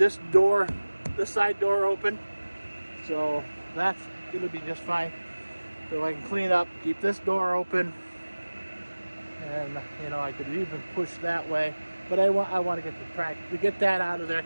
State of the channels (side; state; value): both; inverted; correlation -1.00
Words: side door open. So that's going to be just fine. So I can clean up, keep this door open, and you know, I could even push that way. But I want to get the tractor, to get that out of there,